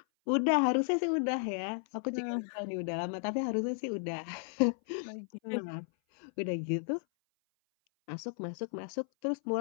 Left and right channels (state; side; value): silent; right; 55 dB below the other